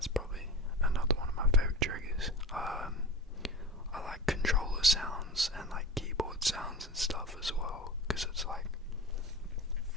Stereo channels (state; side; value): normal; both; correlation 0.30